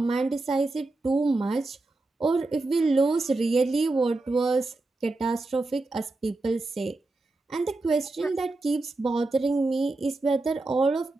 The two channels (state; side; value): quieter; left; 3.1 dB